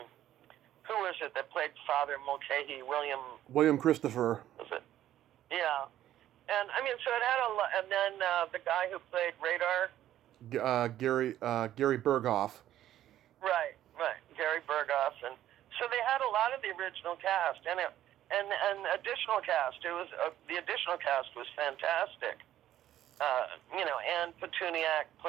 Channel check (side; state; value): left; quieter; 12.5 dB